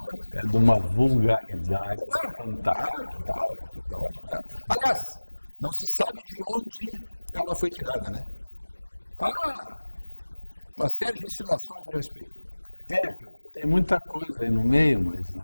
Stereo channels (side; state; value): both; inverted; correlation -1.00